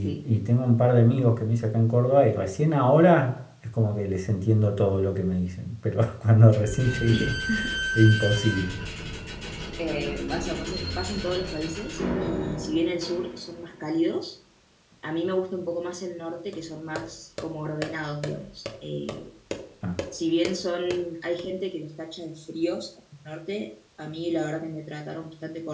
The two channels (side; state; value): both; identical; correlation 1.00